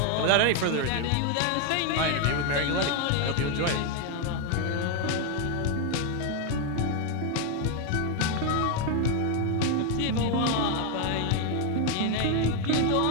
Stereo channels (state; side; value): different; both; correlation 0.01